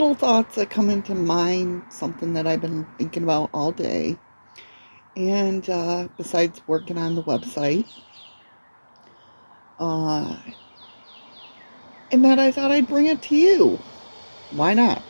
thoughts that come into mind, something that I've been thinking about all day. And besides working on the website, uh, and that I thought I'd bring it to you. Why not,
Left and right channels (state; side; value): inverted; both; correlation -1.00